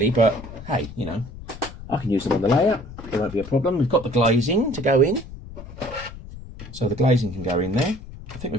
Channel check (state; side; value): noise; left; rumble, 14 dB below the sound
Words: but hey, you know, I can use them on the layout. There won't be a problem. We've got the glazing to go in. So the glazing can go in there. I think